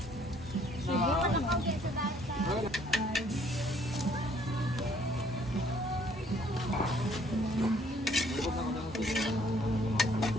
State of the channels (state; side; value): normal; both; correlation 0.62